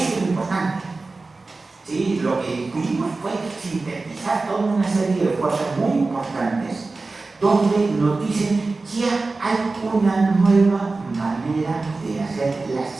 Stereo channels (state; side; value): quieter; left; 3.6 dB